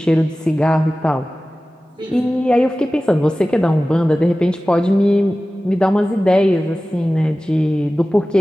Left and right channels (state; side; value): normal; both; correlation 0.96